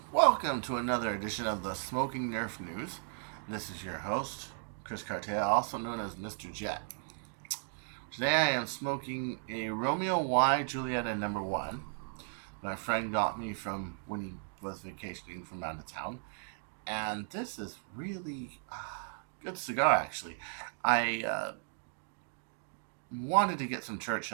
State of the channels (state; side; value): silent; left; digital silence